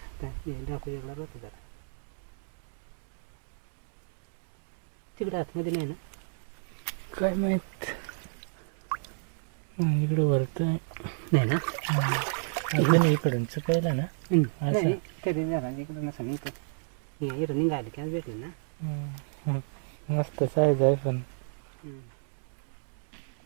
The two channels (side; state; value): left; silent; digital silence